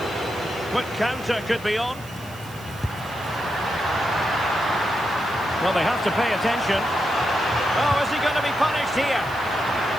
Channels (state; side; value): noise; right; hiss, 20 dB below the sound